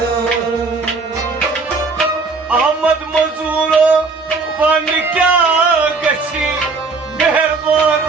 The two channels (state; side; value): quieter; left; 4.1 dB